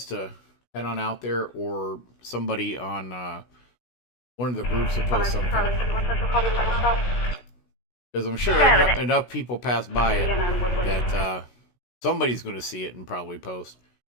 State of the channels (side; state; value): right; late; 16 ms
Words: to head on out there, or somebody on one of the groups to post something. Because I'm sure enough people pass by it that somebody's going to see it and probably post.